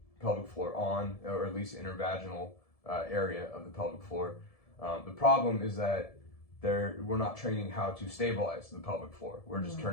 pelvic floor on, or at least intervaginal area of the pelvic floor. The problem is that we're not training how to stabilize the pelvic floor. We're just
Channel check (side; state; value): right; late; 1.7 ms